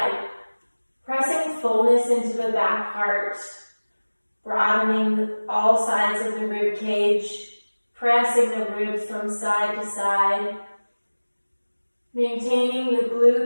Pressing fullness into the back heart, broadening all sides of the rib cage, pressing the ribs from side to side, maintaining the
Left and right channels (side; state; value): both; inverted; correlation -1.00